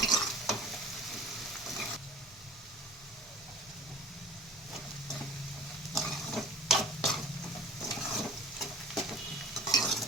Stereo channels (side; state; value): right; noise; hum, 30 dB below the sound